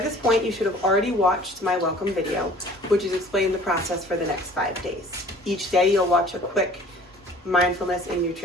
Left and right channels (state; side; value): normal; both; correlation 0.50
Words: this point, you should have already watched my welcome video, which is explaining the process for the next 5 days. Each day, you'll watch a quick mindfulness and